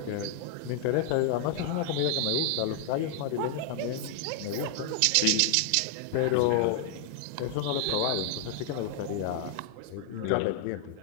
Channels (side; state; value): both; different; correlation -0.01